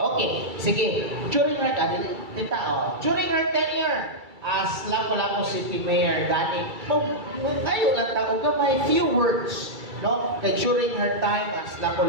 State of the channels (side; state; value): left; late; 2.3 ms